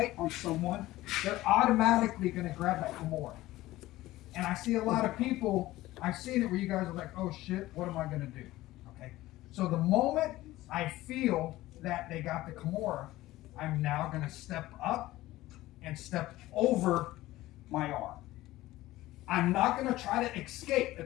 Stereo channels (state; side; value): quieter; right; 16.9 dB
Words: on someone, they're automatically gonna grab that Kimura. And I see a lot of people, I've seen it where you guys are like, oh shit, what am I gonna do, okay? So the moment I feel that they got the Kimura, I'm now going to step up and step over my arm. I'm not going to try to escape